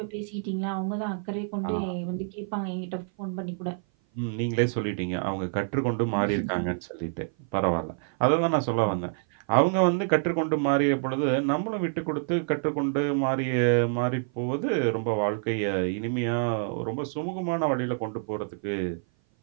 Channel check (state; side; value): silent; left; 56 dB below the other